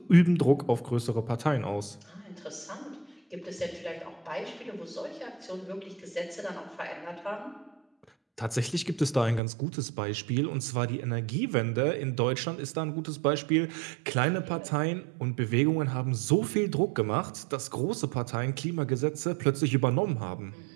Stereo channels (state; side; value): drops out; left; at 9.4 s